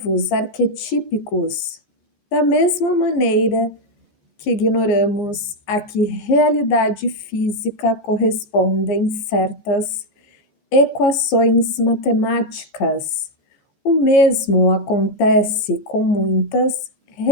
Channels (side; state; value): right; late; 14 ms